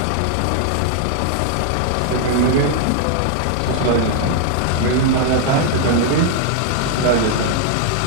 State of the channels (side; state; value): both; different; correlation 0.00